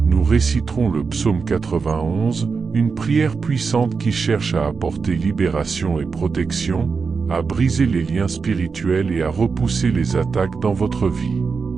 nous réciterons le psaume 91, une prière puissante qui cherche à apporter libération et protection, à briser les liens spirituels et à repousser les attaques dans votre vie.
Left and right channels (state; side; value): quieter; left; 5.1 dB